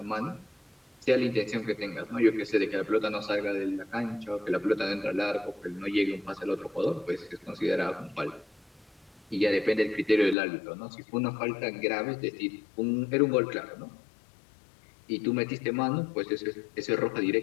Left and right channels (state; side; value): drops out; right; at 10.4 s